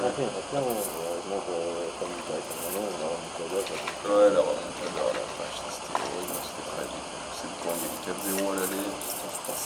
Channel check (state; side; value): identical; both; correlation 1.00